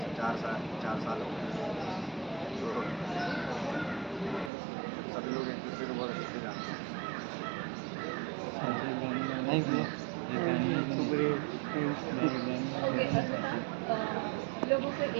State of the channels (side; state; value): left; drops out; at 4.5 s